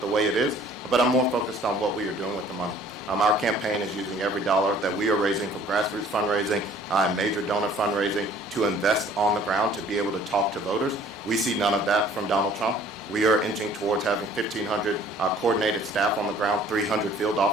way it is. But I'm more focused on what we are doing with the money. Our campaign is using every dollar that we are raising from grassroots fundraising and major donor fundraising to invest on the ground to be able to talk to voters. We see none of that from Donald Trump. We are inching towards having 1,500 coordinated staff on the ground, 300 field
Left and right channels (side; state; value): both; normal; correlation 0.54